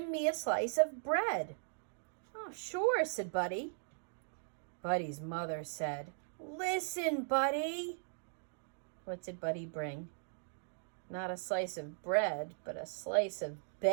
me a slice of bread?" "Oh, sure," said Buddy. Buddy's mother said, "Listen, Buddy." What did Buddy bring? Not a slice of bread, but a slice of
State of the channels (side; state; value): left; silent; digital silence